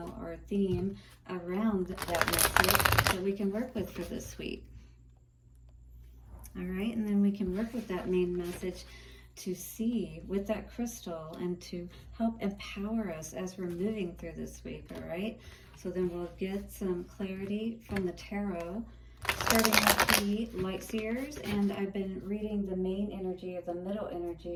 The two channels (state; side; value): identical; both; correlation 1.00